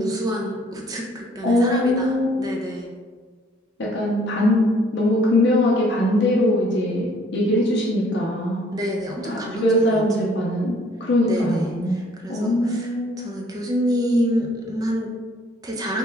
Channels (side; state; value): both; normal; correlation 0.60